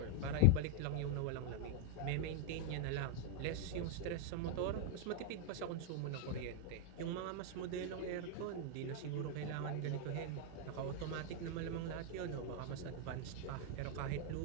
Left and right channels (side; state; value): both; different; correlation 0.00